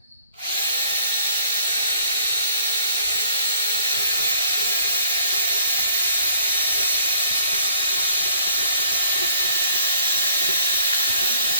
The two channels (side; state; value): both; inverted; correlation -0.60